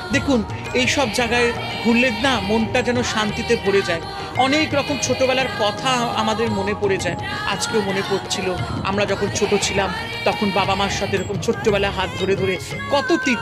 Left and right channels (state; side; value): identical; both; correlation 1.00